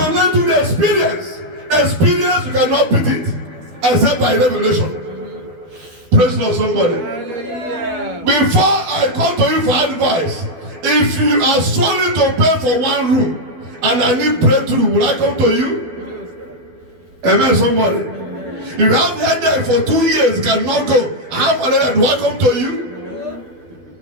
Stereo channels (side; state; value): left; late; 12 ms